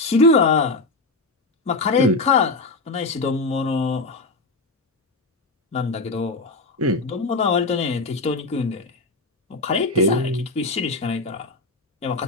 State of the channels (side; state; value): right; quieter; 3.3 dB